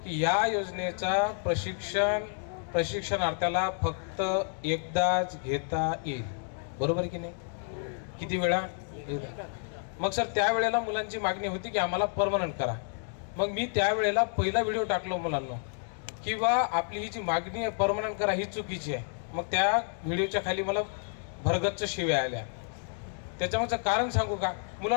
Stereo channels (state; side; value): silent; right; 58 dB below the other